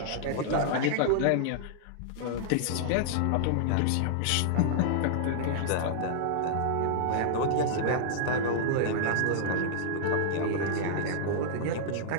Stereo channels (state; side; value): different; both; correlation -0.01